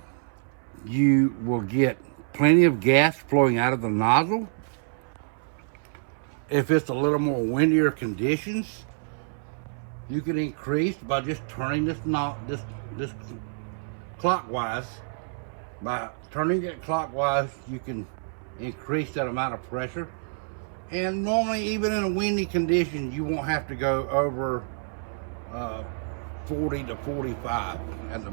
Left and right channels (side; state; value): left; silent; 60 dB below the other